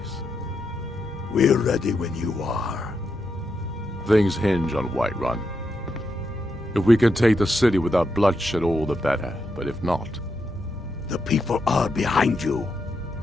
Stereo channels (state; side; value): normal; both; correlation 0.83